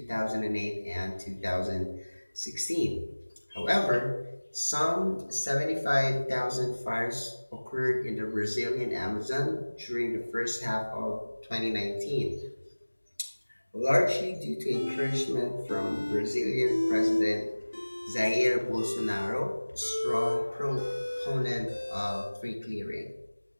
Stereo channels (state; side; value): inverted; both; correlation -1.00